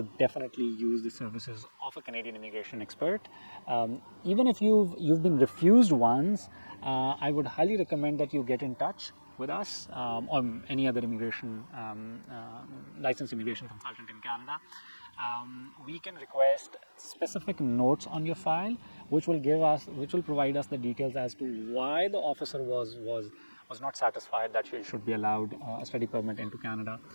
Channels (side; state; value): both; inverted; correlation -1.00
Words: definitely use the services of a Canadian immigration expert. Even if you've been refused once, I would highly recommend that you get in touch with us or any other immigration licensed immigration consultant in Canada. We can request specific notes on your file, which will provide us the details as to why the officer was not satisfied that you should be allowed a study permit into Canada,